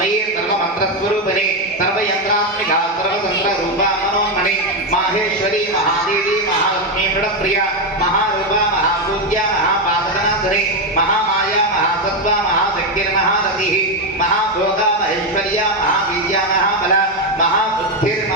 सर्वमंत्रस्वरूपिणी सर्वयंत्रात्मिका सर्वतंत्ररूपा मनोन्मणि माहेश्वरी महादेवी महालक्ष्मी मृडप्रिया महारूपा महापूज्या महापादनाधरी महामाया महासत्त्वा महाशक्तिर्महारतिः महाभोगा महेश्वर्या महावीर्या महाबला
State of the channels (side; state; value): both; normal; correlation 0.07